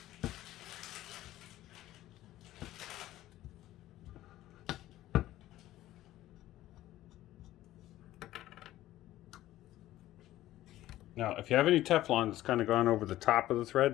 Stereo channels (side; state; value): right; quieter; 14.8 dB